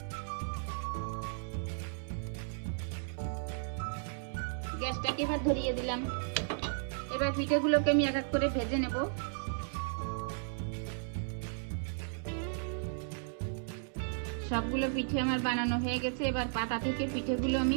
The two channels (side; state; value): left; silent; digital silence